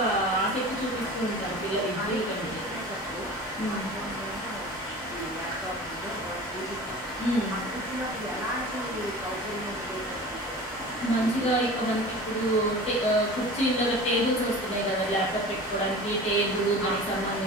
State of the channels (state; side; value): normal; both; correlation 0.37